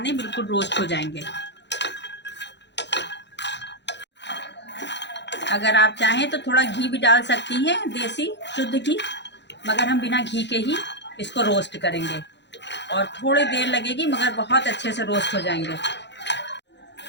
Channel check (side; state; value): right; late; 0.51 ms